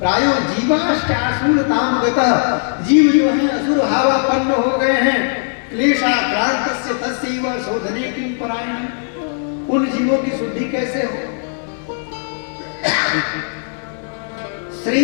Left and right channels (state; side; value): silent; right; digital silence